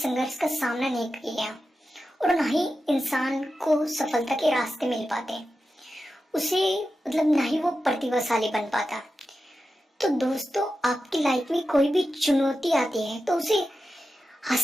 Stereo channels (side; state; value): both; normal; correlation 0.91